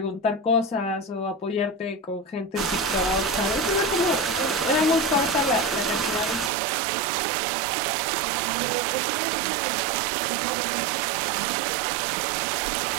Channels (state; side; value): drops out; left; at 6.5 s